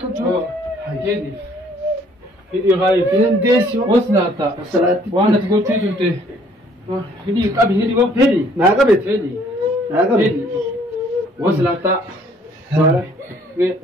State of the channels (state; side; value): normal; both; correlation 0.61